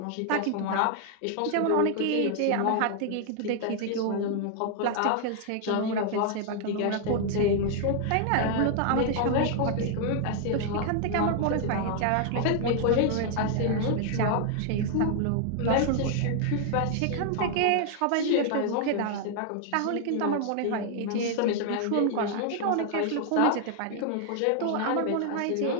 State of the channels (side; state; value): both; different; correlation 0.00